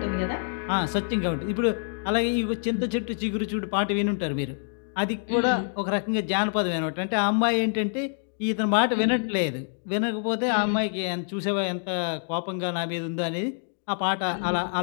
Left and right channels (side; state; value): right; silent; digital silence